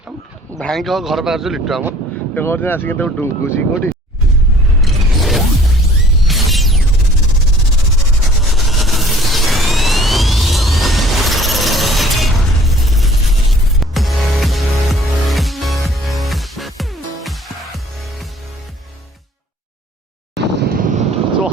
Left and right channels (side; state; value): both; normal; correlation 0.53